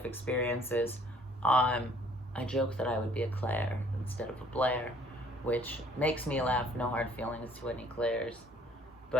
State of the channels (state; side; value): normal; both; correlation 0.59